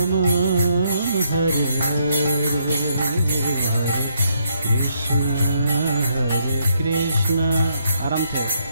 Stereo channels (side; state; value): both; inverted; correlation -0.75